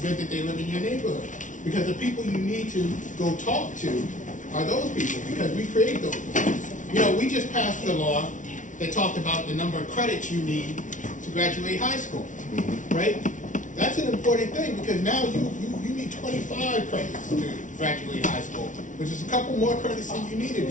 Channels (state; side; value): late; right; 0.37 ms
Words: good that they live in your neighborhood. Because the people you need to go talk to are those people, because we create those people. You know, we just passed the law that talked about the number of credits you need to graduate high school, right? That's an important thing, because now you need 25 credits to graduate high school, which is a couple more credits than you needed